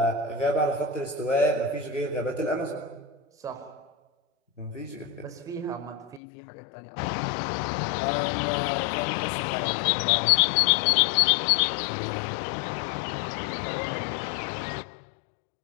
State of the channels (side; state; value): right; drops out; at 6.2 s